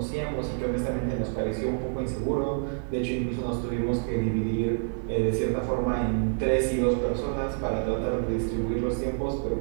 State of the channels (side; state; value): left; silent; 60 dB below the other